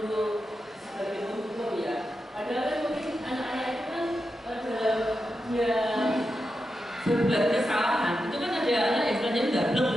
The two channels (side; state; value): both; normal; correlation 0.89